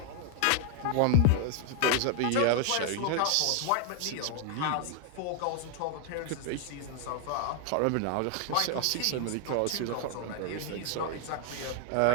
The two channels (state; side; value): different; both; correlation 0.00